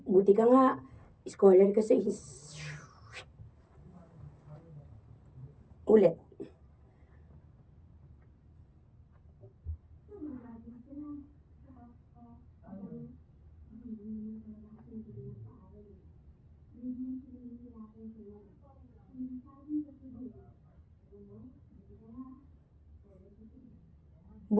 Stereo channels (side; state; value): both; identical; correlation 1.00